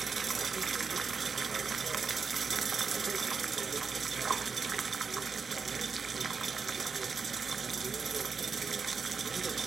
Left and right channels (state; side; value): quieter; left; 5.4 dB